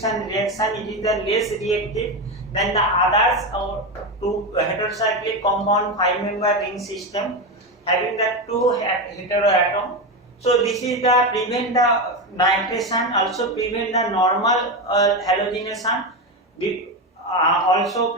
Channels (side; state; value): both; normal; correlation 0.14